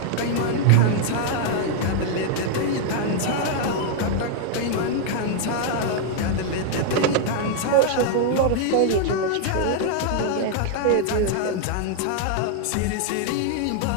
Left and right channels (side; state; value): both; different; correlation 0.00